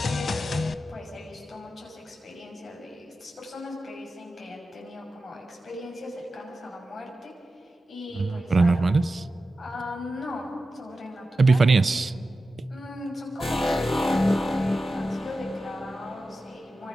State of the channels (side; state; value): both; normal; correlation 0.93